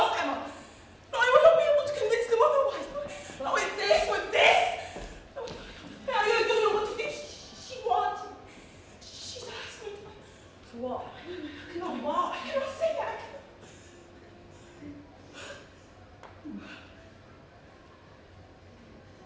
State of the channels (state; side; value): identical; both; correlation 1.00